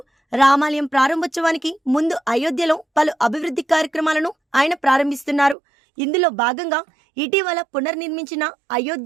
రామాలయం ప్రారంభోత్సవానికి ముందు అయోధ్యలో పలు అభివృద్ధి కార్యక్రమాలను ఆయన ప్రారంభిస్తున్నారు. ఇందులో భాగంగా ఇటీవల పునర్నిర్మించిన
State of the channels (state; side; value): drops out; left; at 5.6 s